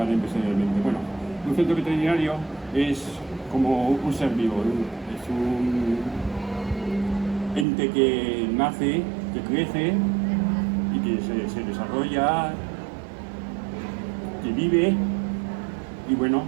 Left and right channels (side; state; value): left; drops out; at 7.7 s